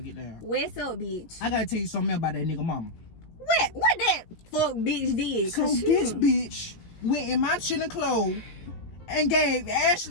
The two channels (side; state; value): right; late; 17 ms